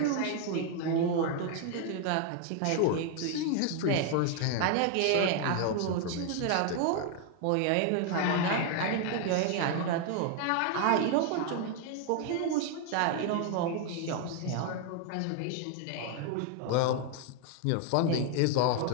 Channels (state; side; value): different; both; correlation 0.00